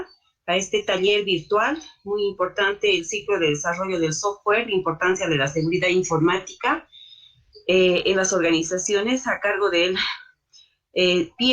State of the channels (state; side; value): identical; both; correlation 1.00